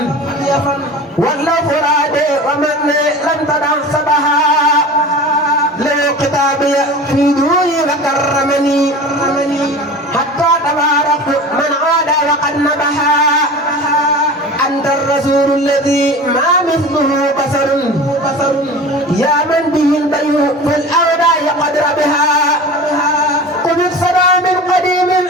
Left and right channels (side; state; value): both; normal; correlation 0.36